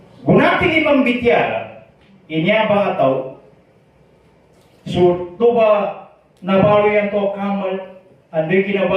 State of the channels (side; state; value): both; identical; correlation 1.00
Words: Gunating imang bityala, inya ba ataw, So, toba nabalo yan to kamal, andoy